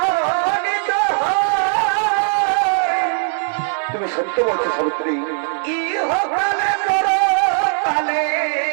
তো হয় তুমি সত্য বলছো সাবিত্রী ইহকালে পরকালে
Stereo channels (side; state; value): left; silent; 61 dB below the other